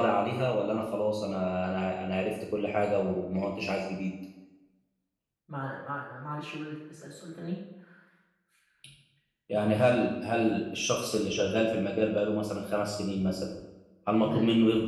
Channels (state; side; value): identical; both; correlation 1.00